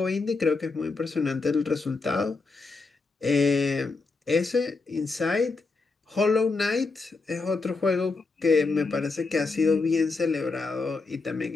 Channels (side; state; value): right; quieter; 3.9 dB